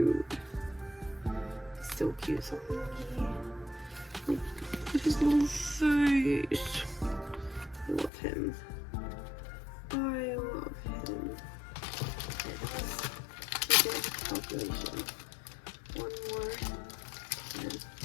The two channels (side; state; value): right; drops out; at 8.1 s